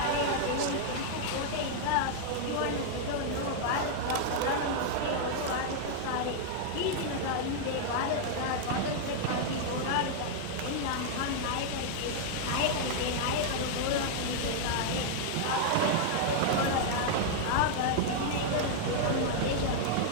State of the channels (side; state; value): both; different; correlation -0.01